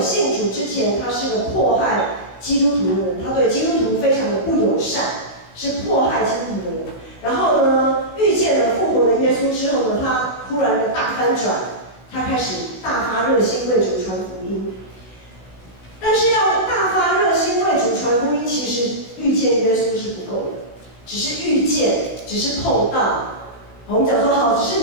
主之前，他是个迫害基督徒的人，他对基督徒非常的不友善，是迫害基督徒的人。然后呢，遇见了复活的耶稣之后呢，他忽然的大翻转，他开始大发热心为主传福音。但是要大发热心为主传福音，其实遇见耶稣是不够的，只是遇见，只是碰到。我们讲说好，只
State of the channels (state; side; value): late; right; 17 ms